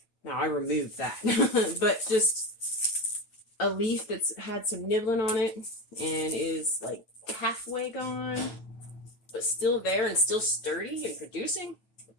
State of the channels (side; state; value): right; late; 9.2 ms